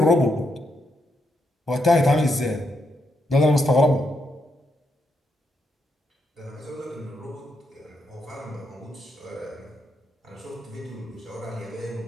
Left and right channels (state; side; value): normal; both; correlation 0.80